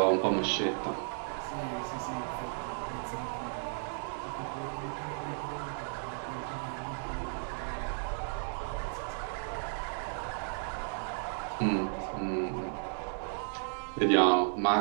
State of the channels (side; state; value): left; silent; 55 dB below the other